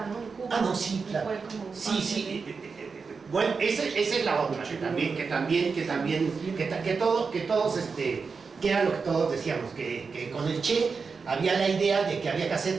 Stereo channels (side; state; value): left; quieter; 5.0 dB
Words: ¿no? En Cuba. Ah, no, sí, claro. Fue como Sí. Bueno, esa es la otra, que era lo que todos decíamos, que con el Che había la idea de que había que